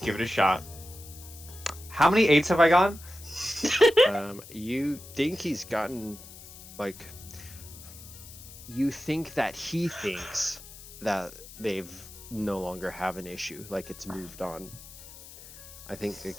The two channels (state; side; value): noise; left; hiss, 17 dB below the sound